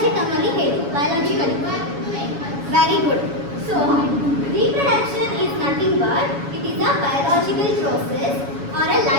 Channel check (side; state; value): left; late; 7.1 ms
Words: term ಅಲ್ಲಿ ಹೇಳಿ. Biologically. Very good. So, reproduction is nothing but it is a biological process or a